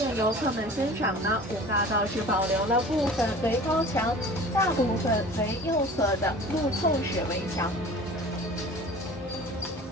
游客们欣赏呢，五大道只保留了部分为高墙，大部分为右侧的路透式围墙。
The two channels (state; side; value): normal; both; correlation 0.42